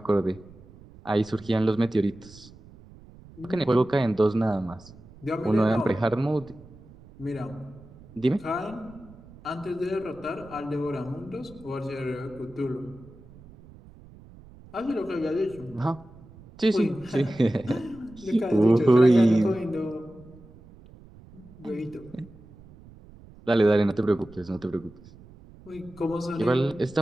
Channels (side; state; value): right; noise; rumble, 22 dB below the sound